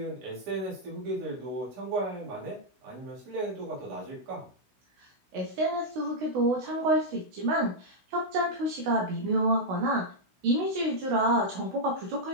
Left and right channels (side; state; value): left; late; 16 ms